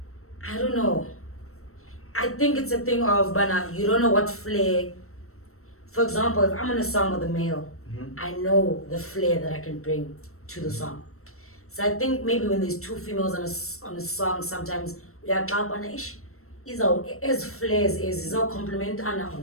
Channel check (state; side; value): late; right; 0.63 ms